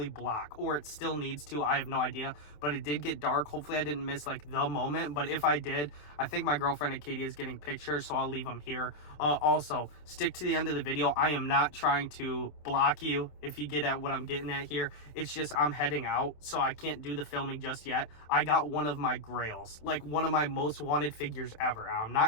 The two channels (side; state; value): right; late; 27 ms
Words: block, or it still needs to. I have no idea, but it did get dark. Hopefully I didn't miss like the moment, but if I did, I think my girlfriend Acadia is getting pictures, so I'll leave them here. Also, stick to the end of the video. I am not trying to block you, if you get at what I'm getting at here. It's just I'm heading out, so I can't do the filming just yet. I got one of my grails, like one of my most wanted figures ever. I'm